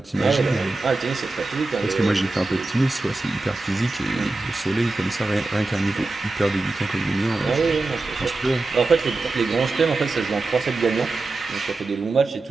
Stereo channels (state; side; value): quieter; left; 3.2 dB